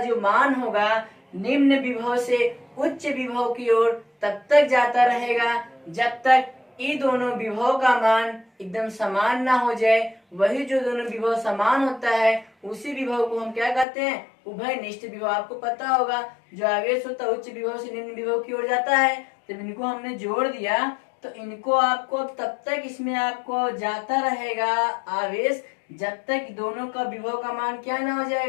मान होगा, निम्न विभव से उच्च विभव की ओर तब तक जाता रहेगा जब तक ये दोनों विभव का मान एकदम समान ना हो जाए। वही जो दोनों विभव समान होता है, उसी विभव को हम क्या कहते हैं, उभयनिष्ठ विभव। आपको पता होगा, जो आवेश होता है उच्च विभव से निम्न विभव की ओर जाता है। जब इनको हमने जोड़ दिया तो इनको आपको तब तक इसमें आपको जाता रहेगा आवेश, जब तक दोनों का विभव का मान क्या ना हो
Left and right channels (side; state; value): right; drops out; at 13.9 s